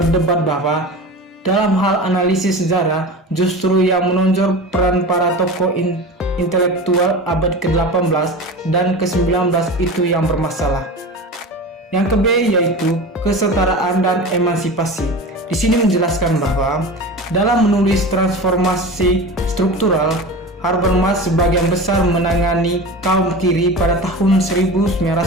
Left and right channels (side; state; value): both; normal; correlation 0.31